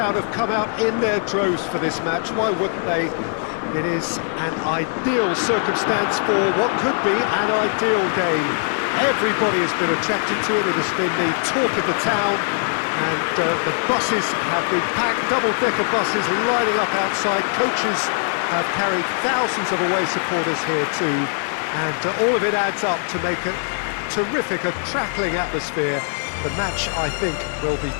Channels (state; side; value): silent; right; digital silence